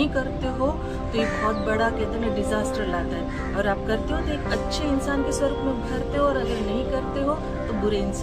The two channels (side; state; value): both; identical; correlation 1.00